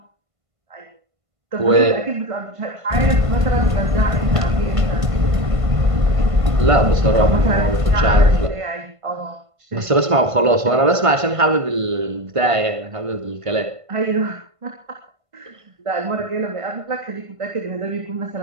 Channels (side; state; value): left; late; 1.5 ms